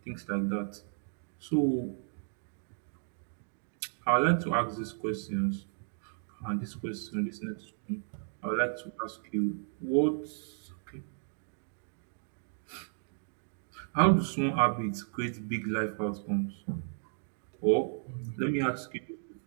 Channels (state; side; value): silent; left; digital silence